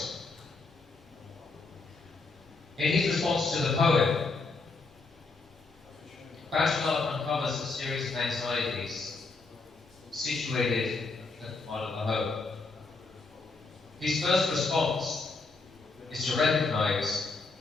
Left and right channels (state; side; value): quieter; right; 3.9 dB